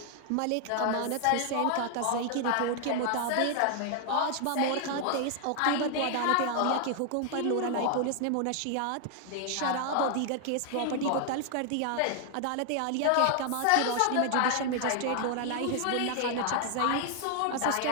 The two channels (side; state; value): both; different; correlation 0.00